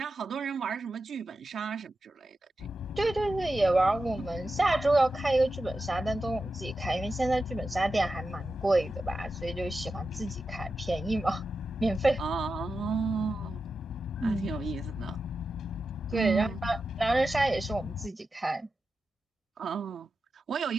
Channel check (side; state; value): both; normal; correlation 0.91